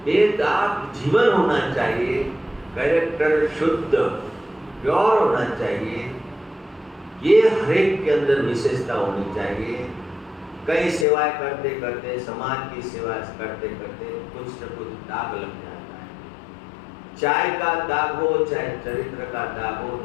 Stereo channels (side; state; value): right; drops out; at 11.1 s